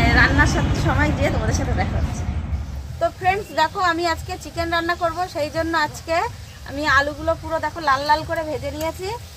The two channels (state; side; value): identical; both; correlation 1.00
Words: রান্নার সময় গিয়ে তোমাদের সাথে দেখা হচ্ছে। তো ফ্রেন্ডস দেখো, আমি আজকে চিকেন রান্না করব, সেই জন্য আজকে আমি আলুগুলো পুরো দেখো লাল লাল করে ভেজে নিয়েছি।